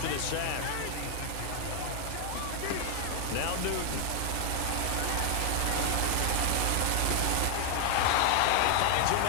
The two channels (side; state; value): both; different; correlation 0.00